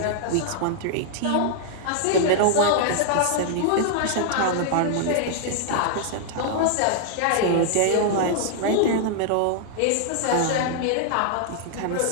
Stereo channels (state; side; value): different; both; correlation -0.01